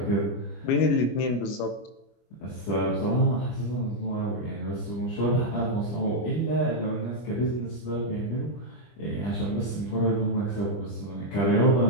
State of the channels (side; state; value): right; late; 25 ms